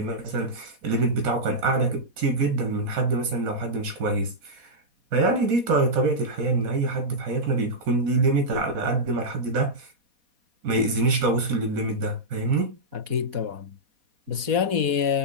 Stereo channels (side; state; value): left; late; 4.1 ms